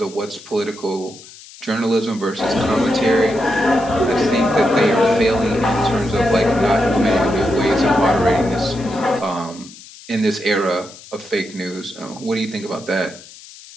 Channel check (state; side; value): noise; left; hiss, 19 dB below the sound